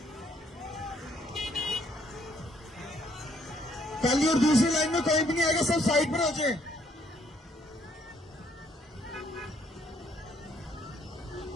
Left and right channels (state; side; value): normal; both; correlation 0.68